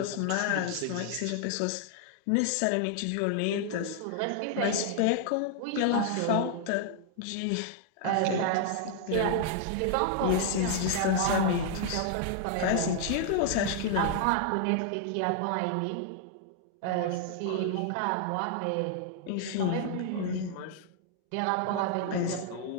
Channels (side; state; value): both; different; correlation -0.01